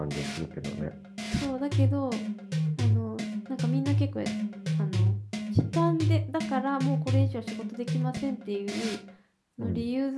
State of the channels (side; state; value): both; identical; correlation 1.00